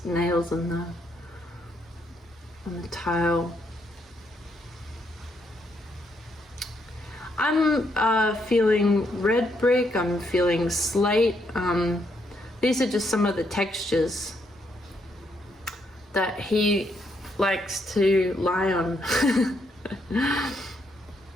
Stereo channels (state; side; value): normal; both; correlation 0.75